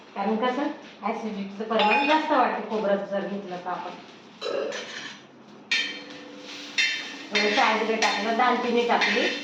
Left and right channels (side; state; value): both; identical; correlation 1.00